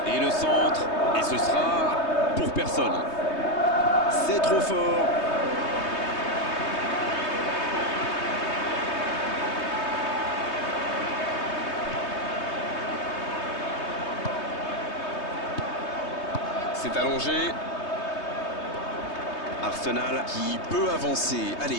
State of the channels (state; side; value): late; right; 3.2 ms